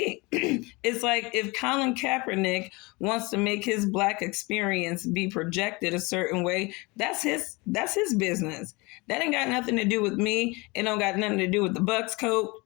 It's like if Colin Kaepernick wants to make his black experience be projected a certain way, that's his business. That ain't got nothing to do with me. It don't got nothing to do with the Bucks coat.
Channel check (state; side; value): quieter; right; 25.6 dB